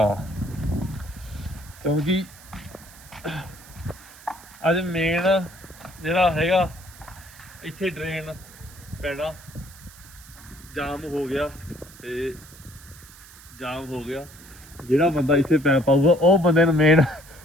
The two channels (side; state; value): right; noise; hiss, 21 dB below the sound